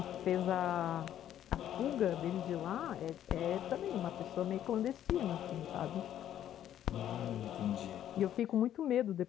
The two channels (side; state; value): right; quieter; 11.1 dB